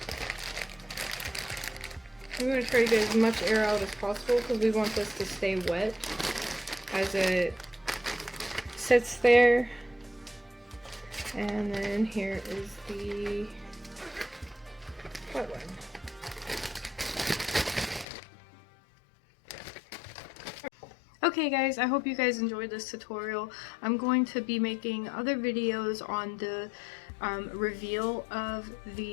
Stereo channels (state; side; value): drops out; right; at 18.1 s